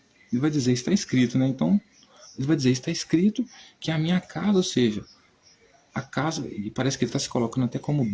ele vai dizer, está escrito, né? Então, ele vai dizer, está escrito que a minha casa, ou seja, a casa, e parece que ele está se colocando até como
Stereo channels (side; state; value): both; identical; correlation 1.00